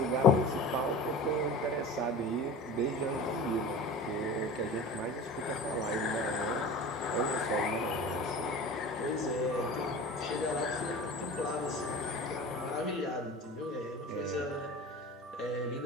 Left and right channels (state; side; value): normal; both; correlation 0.35